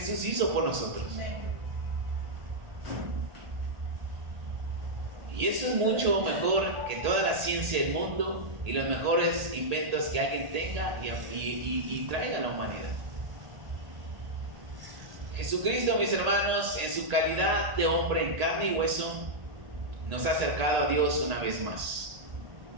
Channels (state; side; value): late; left; 1.8 ms